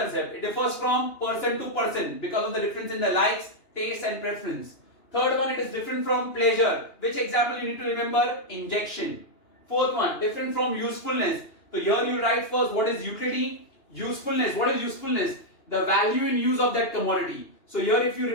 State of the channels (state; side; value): late; right; 2.9 ms